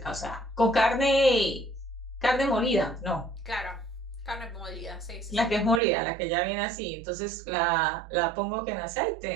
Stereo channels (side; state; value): left; drops out; at 5.8 s